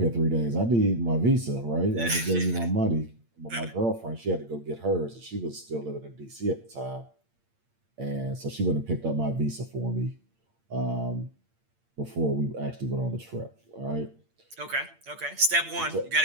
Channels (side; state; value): left; late; 8.7 ms